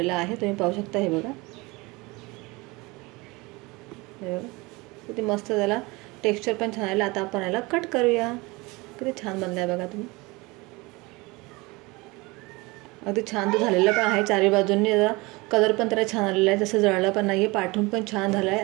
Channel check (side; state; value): left; quieter; 24.2 dB